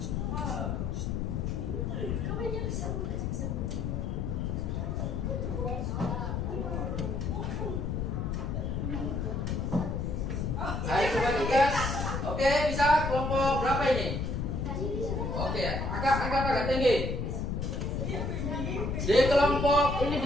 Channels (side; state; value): left; noise; rumble, 1 dB below the sound